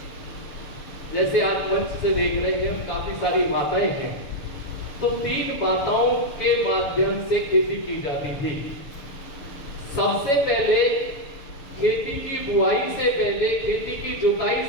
जैसे आज मंच से देख रहे हैं हम, काफी सारी माताएं हैं, तो 3 माताओं के माध्यम से खेती की जाती थी। सबसे पहले खेती की बुआई से पहले, खेती की जुताई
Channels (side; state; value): right; late; 6.7 ms